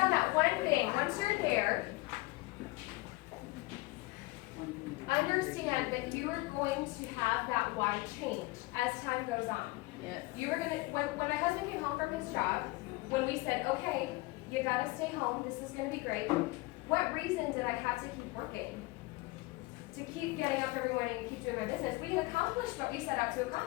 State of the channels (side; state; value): right; quieter; 22.0 dB